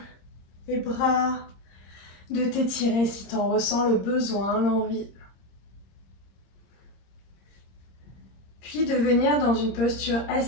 les bras, de t'étirer si tu en ressens le besoin, l'envie. Puis de venir dans une posture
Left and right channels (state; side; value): late; right; 26 ms